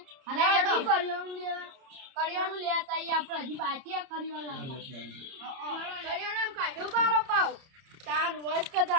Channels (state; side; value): late; left; 30 ms